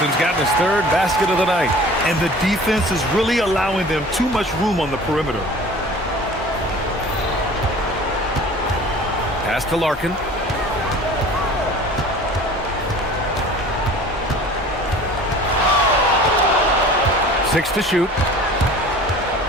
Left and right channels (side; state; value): both; normal; correlation 0.44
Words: gotten his third basket of the night. And the defense is really allowing them too much room on the perimeter. Pass to Larkin. Six to shoot.